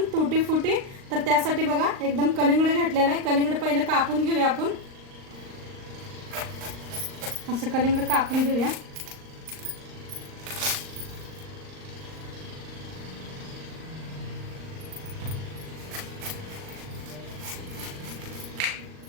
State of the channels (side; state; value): left; late; 38 ms